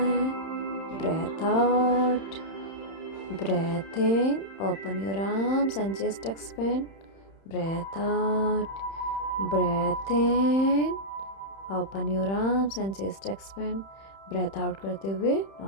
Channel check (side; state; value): right; late; 31 ms